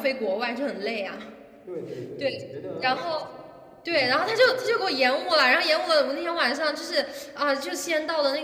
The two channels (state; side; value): identical; both; correlation 1.00